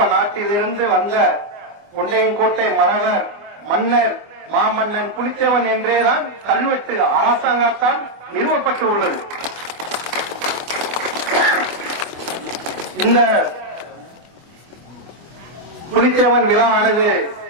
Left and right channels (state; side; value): late; left; 24 ms